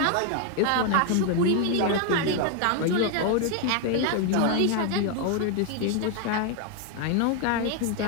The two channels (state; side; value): different; both; correlation 0.01